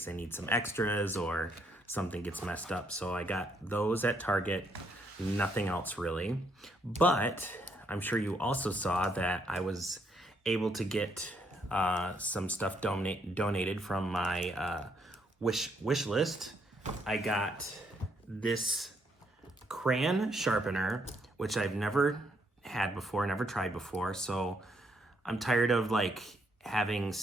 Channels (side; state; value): both; normal; correlation 0.72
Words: I need some extras or something gets messed up. So I got those at Target, nothing else really. But I'm sure you also saw that I was able to get some stuff donated from my wish list. I got this crayon sharpener, which I've never had before, never tried before. So I'm tired of like having